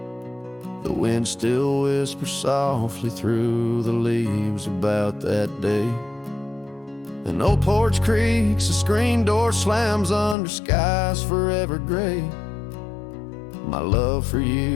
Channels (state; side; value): drops out; right; at 10.4 s